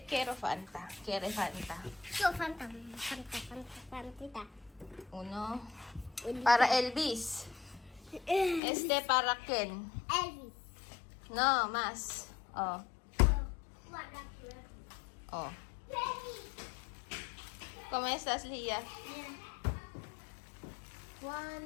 Fanta. Fanta. Uno. Para Elvis. Este para Ken. Elvis. No, más. Oh. Oh. ¿Cómo estás, Lia?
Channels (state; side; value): drops out; right; at 8.6 s